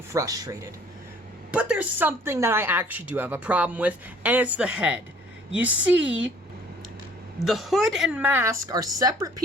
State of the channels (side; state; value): both; normal; correlation 0.55